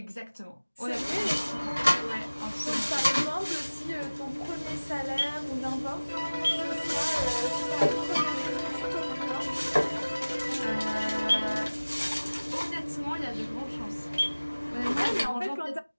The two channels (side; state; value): both; inverted; correlation -1.00